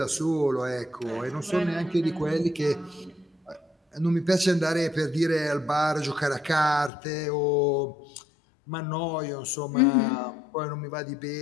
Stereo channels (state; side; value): drops out; right; at 6.9 s